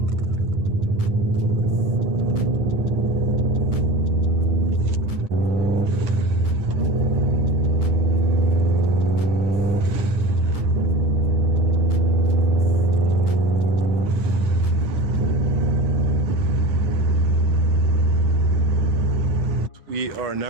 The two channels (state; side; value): late; left; 9.1 ms